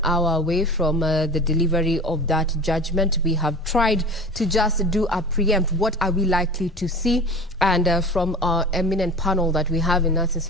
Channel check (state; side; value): normal; both; correlation 0.35